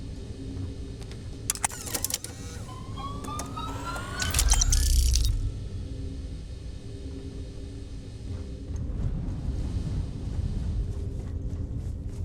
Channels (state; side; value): identical; both; correlation 1.00